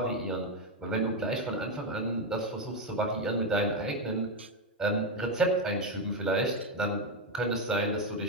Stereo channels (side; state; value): both; normal; correlation 0.06